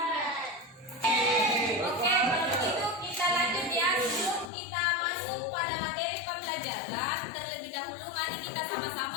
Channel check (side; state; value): right; drops out; at 4.5 s